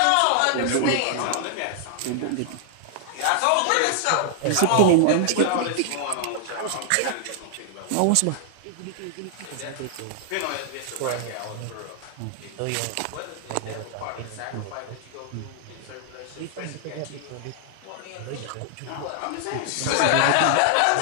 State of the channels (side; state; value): both; different; correlation 0.00